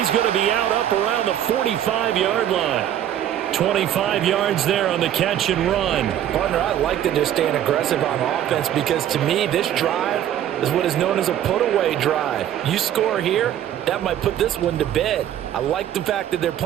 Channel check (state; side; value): quieter; left; 11.0 dB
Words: going to be out up around the 45-yard line. 25 yards there on the catch and run. Partner, I like that they're staying aggressive on offense because to me, this drive is what is known as a put-away drive. You score here, that might put this one to bed. I like the fact that they're